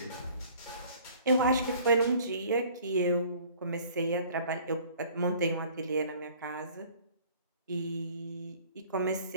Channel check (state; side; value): inverted; both; correlation -0.53